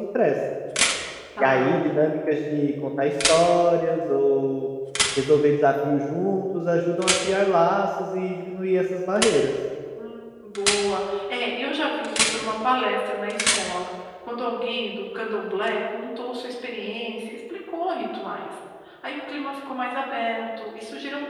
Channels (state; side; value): identical; both; correlation 1.00